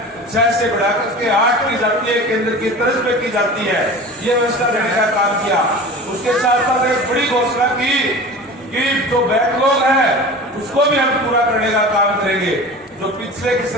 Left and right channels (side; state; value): both; normal; correlation 0.36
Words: 6 से बढ़ाकर के 8 की जाती है, केंद्र की तरफ पे की जाती है, ये व्यवस्था देने का काम किया। उसके साथ साथ एक बड़ी घोषणा की कि जो बैकलॉग है उसको भी हम पूरा करने का काम करेंगे। जो पिछले की